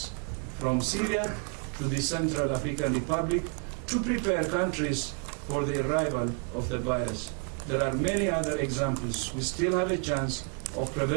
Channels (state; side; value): quieter; left; 37.8 dB